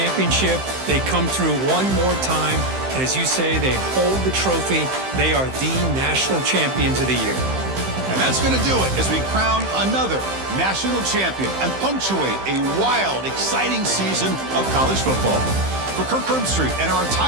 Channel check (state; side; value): late; left; 15 ms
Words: They come through one more time. And as you say, they hold the trophy. They are the national champions of the year. And that's going to do it as we crown another national champion and punctuate a wild, exciting season of college football. For Kirk Herbstreit and our